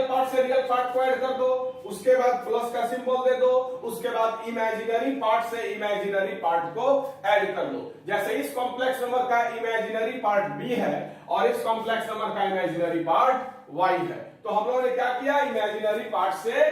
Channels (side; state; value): both; identical; correlation 1.00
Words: पार्ट से रियल पार्ट को ऐड कर दो, उसके बाद प्लस का सिंबल दे दो, उसके बाद इमेजिनरी पार्ट से इमेजिनरी पार्ट को ऐड कर दो। जैसे इस कॉम्प्लेक्स नंबर का इमेजिनरी पार्ट B है और इस कॉम्प्लेक्स नंबर का इमेजिनरी पार्ट Y है। तो हम लोगों ने क्या किया? इमेजिनरी पार्ट से